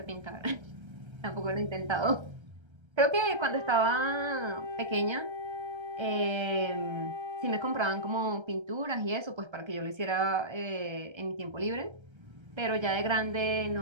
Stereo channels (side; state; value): left; late; 1.3 ms